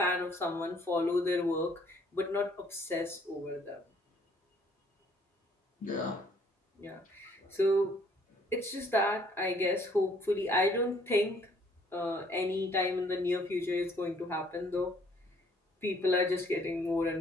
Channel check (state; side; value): normal; both; correlation 0.62